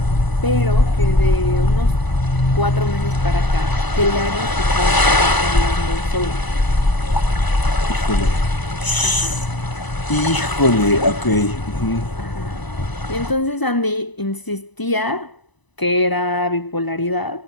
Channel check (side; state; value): right; late; 1.0 ms